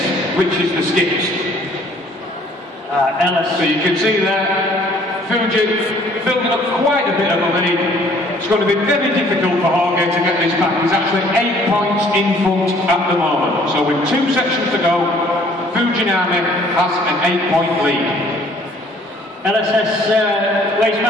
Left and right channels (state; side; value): normal; both; correlation 0.58